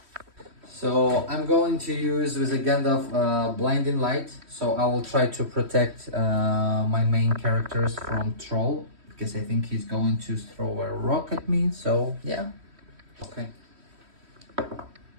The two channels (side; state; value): left; late; 3.1 ms